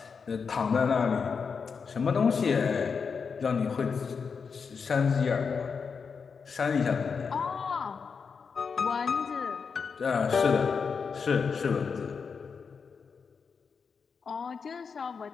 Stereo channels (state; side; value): quieter; right; 5.7 dB